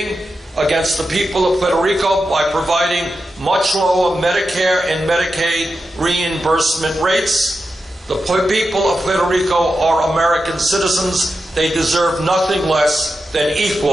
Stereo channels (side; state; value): both; normal; correlation 0.89